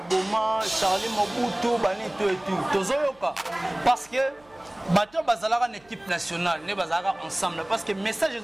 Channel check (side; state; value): right; noise; hum, 29 dB below the sound